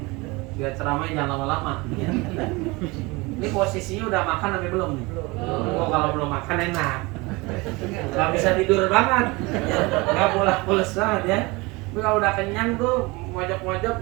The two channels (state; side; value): quieter; left; 24.4 dB